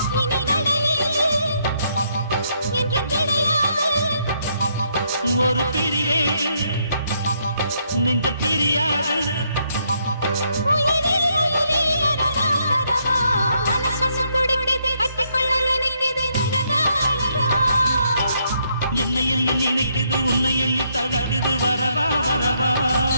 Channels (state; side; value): inverted; both; correlation -0.74